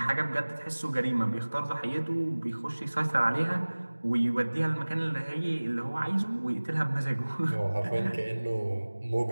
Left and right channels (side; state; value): both; inverted; correlation -1.00